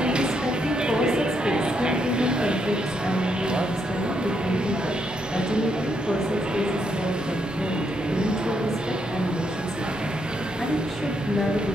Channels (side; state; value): both; normal; correlation 0.77